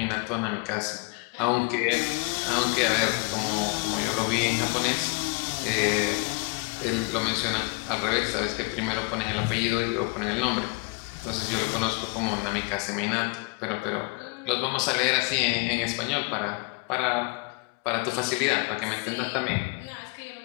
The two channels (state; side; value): quieter; right; 29.6 dB